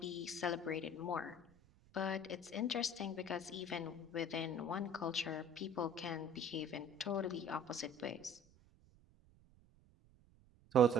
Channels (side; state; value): right; noise; rumble, 27 dB below the sound